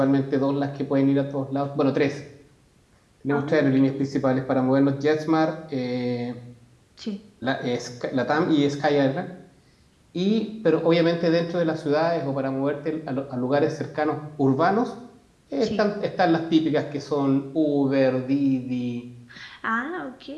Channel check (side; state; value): both; identical; correlation 1.00